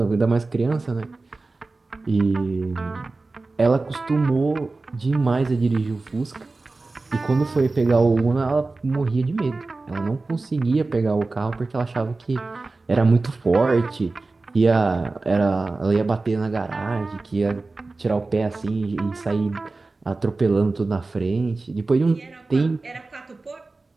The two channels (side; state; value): left; quieter; 3.5 dB